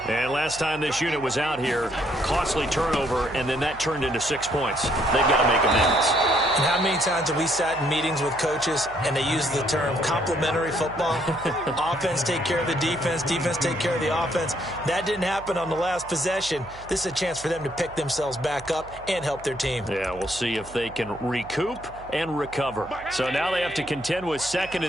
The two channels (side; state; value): right; noise; hum, 19 dB below the sound